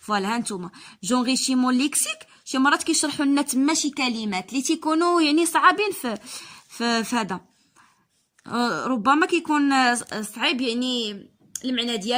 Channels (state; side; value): identical; both; correlation 1.00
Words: فوالا هانتوما جونغيشيمون ليكسيك، شي مرات كيشرحوا لنا تما شي كلمات اللي تيكونوا يعني صعابين في هذا، ربما كيكون صعيب يعني المعنى